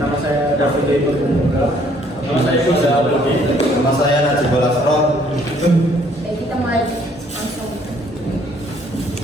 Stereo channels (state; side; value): normal; both; correlation 0.63